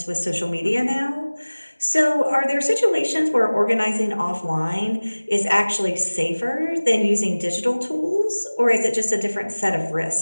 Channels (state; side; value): inverted; both; correlation -1.00